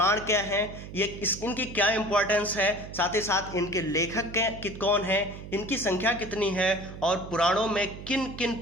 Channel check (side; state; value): right; noise; hum, 12 dB below the sound